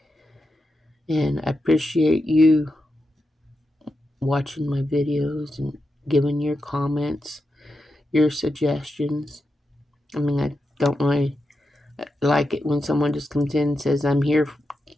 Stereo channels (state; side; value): normal; both; correlation 0.88